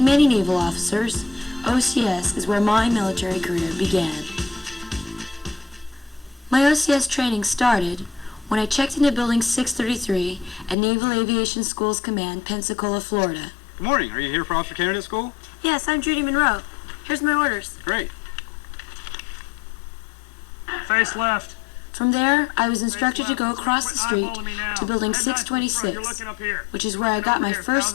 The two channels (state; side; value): drops out; right; at 10.8 s